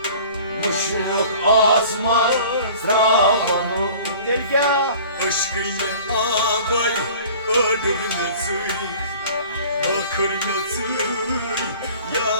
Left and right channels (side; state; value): both; inverted; correlation -0.46